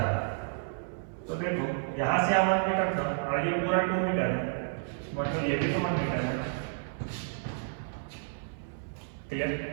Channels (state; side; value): silent; left; 57 dB below the other